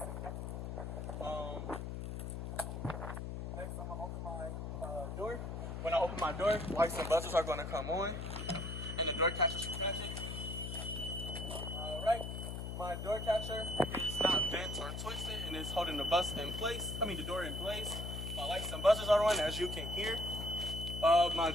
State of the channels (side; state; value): left; noise; hum, 5 dB below the sound